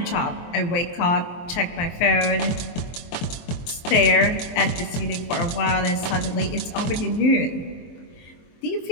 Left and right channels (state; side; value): late; right; 23 ms